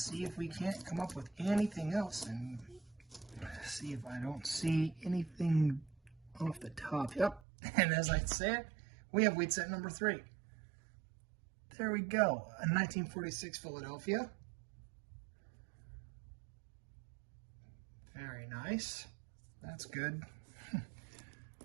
if we can't come up with anything else. And see if I don't see anything off the top. Yep. And as I say it, we have wheat cent number 3. There we go. A 1946 Philadelphia. Very nice. That's good.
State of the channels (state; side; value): drops out; left; at 7.4 s